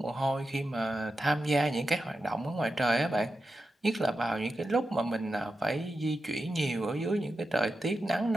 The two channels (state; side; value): normal; both; correlation 0.90